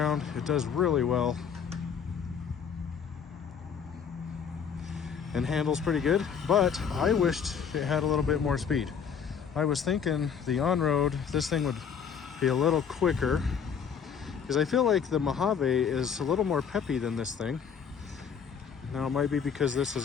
it does really well and handles pretty good. But I wished it had a little bit more speed. I was thinking the on-road, this thing would be a little quicker, because I feel like the Mojave is a little more peppy than this thing. Now it might be because this has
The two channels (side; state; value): right; quieter; 7.1 dB